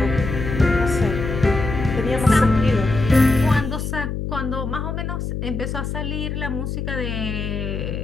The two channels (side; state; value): left; noise; hum, 4 dB below the sound